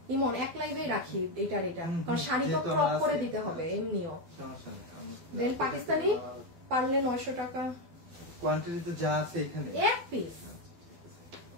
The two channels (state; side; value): late; left; 12 ms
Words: ইমন এক লাইভেই রাখি এটার এটা, কারণ শাড়ি তো ক্রপ করে দিতে হবে এমনিও। দেন পাকিস্তানি পারলে 900 টাকা কোয়ান্টিটিতে যা আছে এখানে এক পিস।